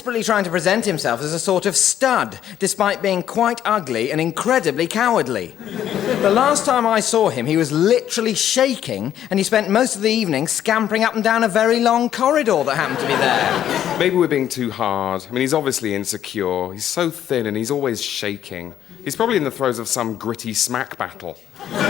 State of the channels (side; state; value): right; quieter; 10.7 dB